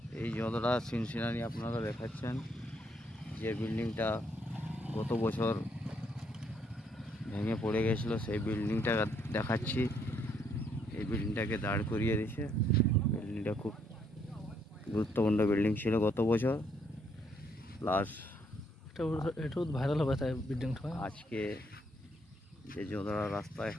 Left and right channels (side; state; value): both; normal; correlation 0.71